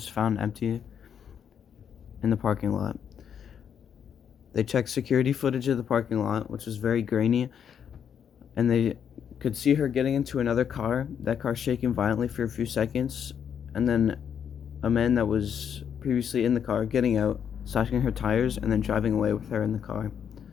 found empty in the parking lot. They checked security footage of the parking lot, which was very grainy, and they could see her getting into another car, that car shaking violently for a few seconds, and then a man that was previously in the car getting out, slashing her tires, and then driving away with her in the car.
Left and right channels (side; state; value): right; quieter; 8.1 dB